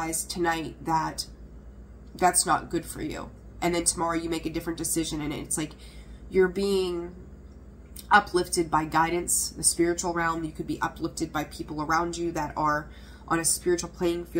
tonight that that's not good for you. and then tomorrow you make a different decision, and it's like you're being uplifted by guidance, the spiritual realm. You could be uplifted by people around you that are on a spiritual playing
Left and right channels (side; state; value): both; identical; correlation 1.00